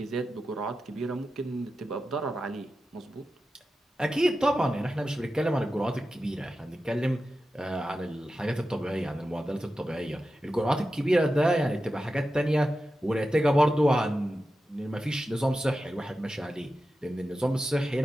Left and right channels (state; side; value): normal; both; correlation 0.92